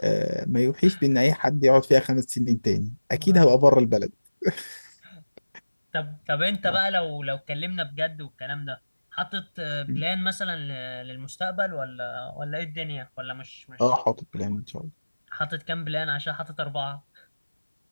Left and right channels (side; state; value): both; inverted; correlation -1.00